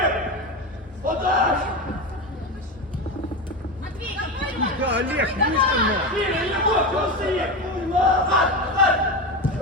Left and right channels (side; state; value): both; normal; correlation 0.20